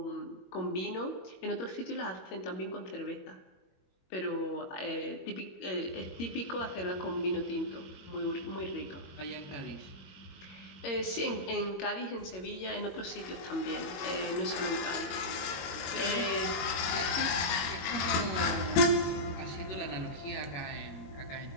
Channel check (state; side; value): late; right; 22 ms